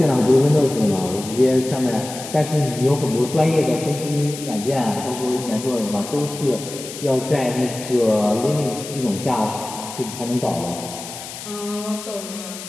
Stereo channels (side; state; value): left; noise; hiss, 11 dB below the sound